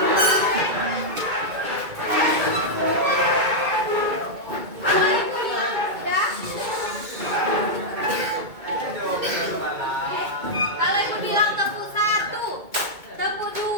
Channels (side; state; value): left; late; 2.2 ms